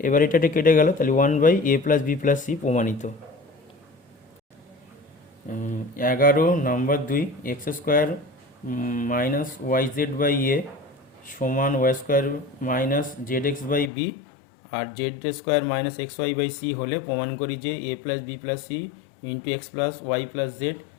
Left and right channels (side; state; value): right; drops out; at 13.9 s